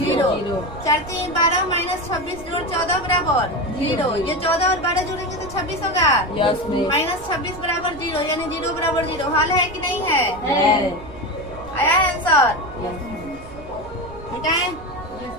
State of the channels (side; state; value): right; noise; rumble, 17 dB below the sound